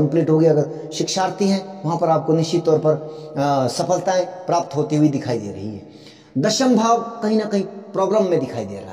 हो गई। अगर शिक्षार्थी हैं वहां पर आपको निश्चित तौर पर सफलताएं प्राप्त होती हुई दिखाई दे रही है। दशम भाव कहीं ना कहीं प्रॉब्लम में दिखाई दे रहा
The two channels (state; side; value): identical; both; correlation 1.00